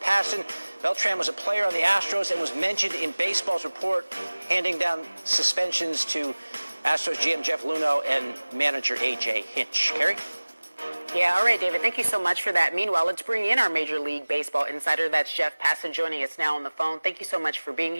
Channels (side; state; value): both; inverted; correlation -1.00